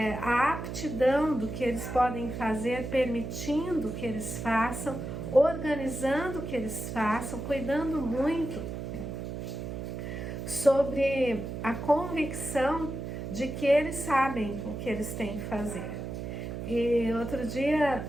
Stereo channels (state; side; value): noise; right; hum, 6 dB below the sound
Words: a aptidão do que eles podem fazer, permitindo que eles façam, organizando que eles façam, cuidando muito sobre a convicção de que eles sabem o que eles têm que fazer. E outro dia